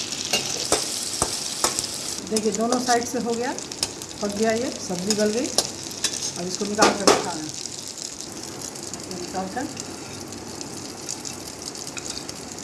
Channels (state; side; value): identical; both; correlation 1.00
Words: देखिए दोनों साइड से हो गया, पक गया, ये सब्जी गल गई। अब इसको निकाल कर रखा है, निकाल कर